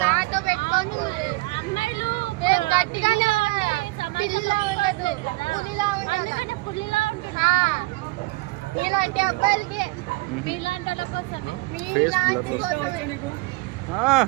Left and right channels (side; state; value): left; quieter; 23.3 dB